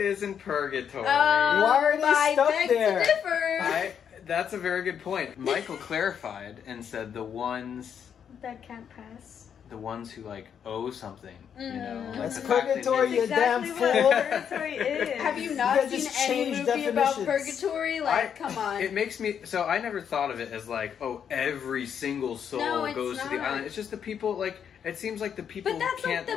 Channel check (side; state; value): right; quieter; 8.0 dB